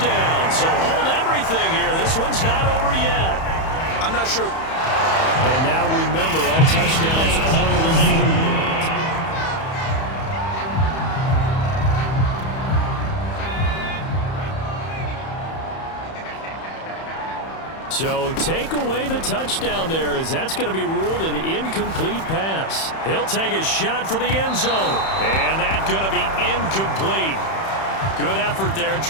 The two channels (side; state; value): right; late; 31 ms